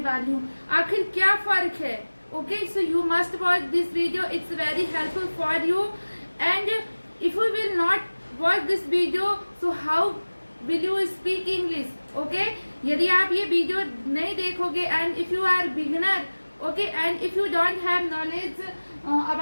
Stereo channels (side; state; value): both; inverted; correlation -1.00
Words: हूँ. आखिर क्या फर्क है? Okay, so you must watch this video. It's very helpful for you. And if you will not watch this video, so how will you speak English? Okay, यदि आप ये वीडियो नहीं देखोगे and if you are beginner, okay, and if you don't have knowledge